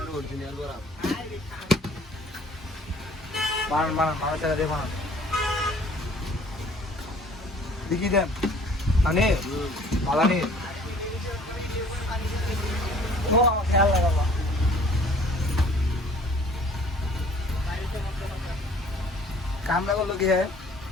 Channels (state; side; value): normal; both; correlation 0.53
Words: অরিজিনাল বরফ বানান চালা দিয়ে বানান দেখি দেন আনে পালানি ও আমার খেয়াল লাগাবা কামরা করলো কি হ্যাঁ